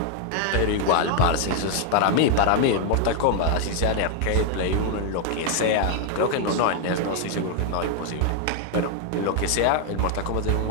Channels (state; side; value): different; both; correlation 0.00